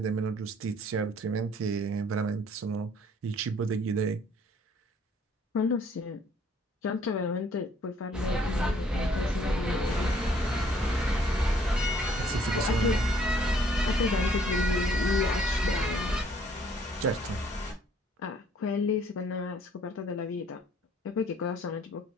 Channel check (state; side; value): normal; both; correlation 0.61